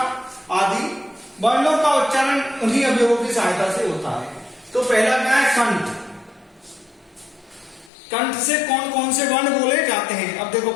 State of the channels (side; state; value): right; drops out; at 7.9 s